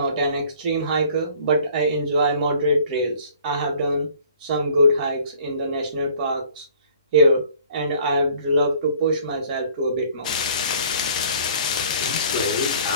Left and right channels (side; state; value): both; inverted; correlation -0.53